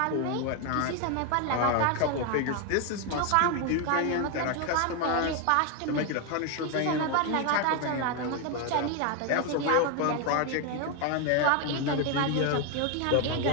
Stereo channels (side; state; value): both; different; correlation 0.01